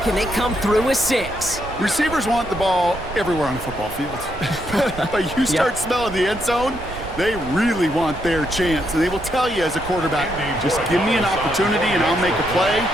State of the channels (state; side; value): noise; right; rumble, 13 dB below the sound